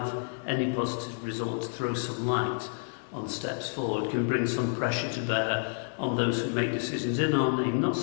any positive results, throw some light on steps forward, can bring some pressure to bear on those who make decisions in our name, not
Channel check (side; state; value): right; silent; digital silence